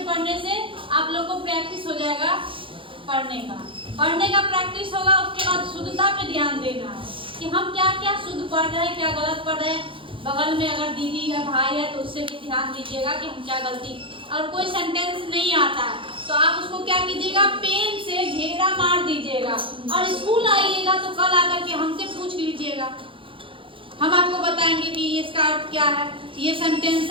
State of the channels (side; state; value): left; late; 0.25 ms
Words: पढ़ने से आप लोगों को प्रैक्टिस हो जाएगा पढ़ने का प्रैक्टिस होगा उसके बाद शुद्धता पे ध्यान देना बगल में अगर दीदी या भाई है तो उससे भी ध्यान दीजिएगा कि हम क्या गलती। और कोई सेंटेंस नहीं आता है तो आप उसको क्या कीजिएगा, पेन से घेरा मार दीजिएगा और स्कूल आइएगा तो कल आकर के हमसे पूछ लीजिएगा। हम आपको बताएंगे कि इसका अर्थ क्या है। ये सेंटेंस